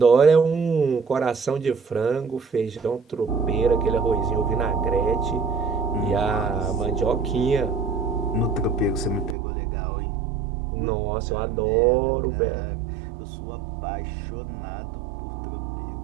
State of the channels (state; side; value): drops out; left; at 9.3 s